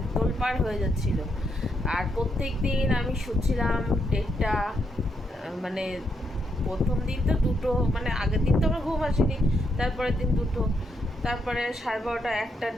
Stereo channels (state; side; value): normal; both; correlation 0.79